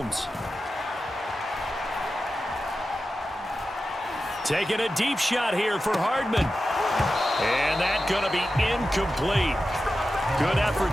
Taking a deep shot here for Hardman. And that's going to be incomplete. Good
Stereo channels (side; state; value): both; normal; correlation 0.92